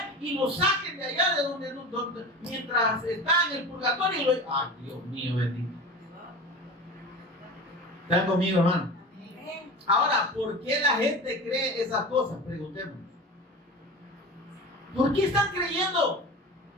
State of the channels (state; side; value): normal; both; correlation 0.32